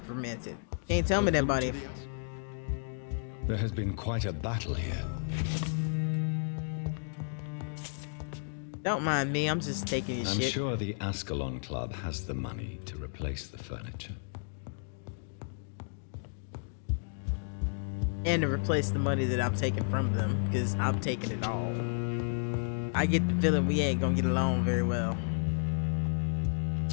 fermented. Can't tell me that body. There has been quite a battle here. Don't mind me. I'm just taking your shit. I'm sure the Ascalon Club has the money to replace the furniture. And to replace the money that I'm taking from them, because I'm taking it all. I get the feeling we ain't gonna get along very well.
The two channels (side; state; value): right; silent; digital silence